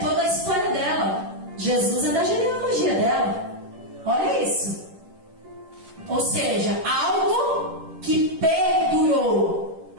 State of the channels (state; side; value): late; left; 10 ms